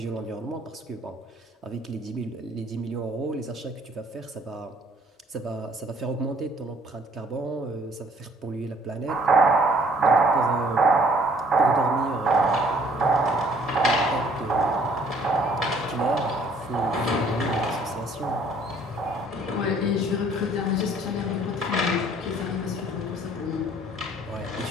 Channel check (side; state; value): both; normal; correlation 0.60